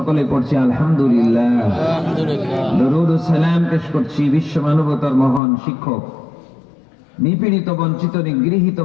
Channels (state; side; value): drops out; right; at 5.4 s